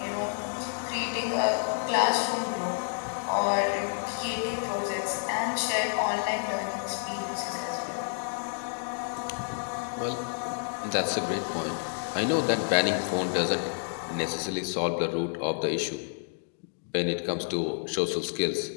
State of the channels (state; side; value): silent; right; digital silence